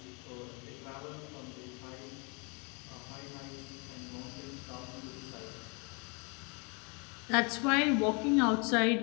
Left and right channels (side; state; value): right; quieter; 32.6 dB